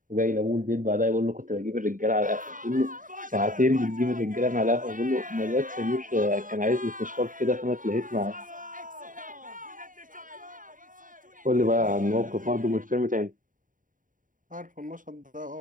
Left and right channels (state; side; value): late; left; 0.39 ms